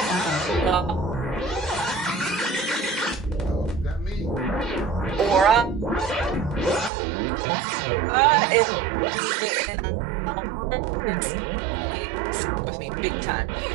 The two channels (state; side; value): drops out; left; at 6.9 s